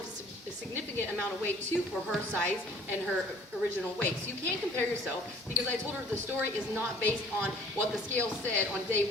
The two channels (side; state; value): both; normal; correlation 0.52